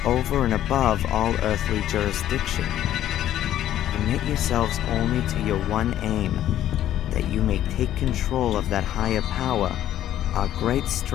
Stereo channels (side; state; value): right; quieter; 12.1 dB